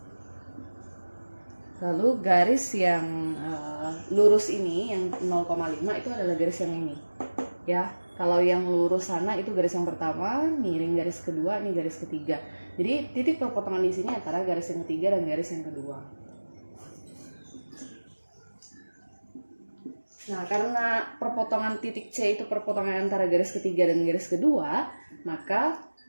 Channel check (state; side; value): inverted; both; correlation -1.00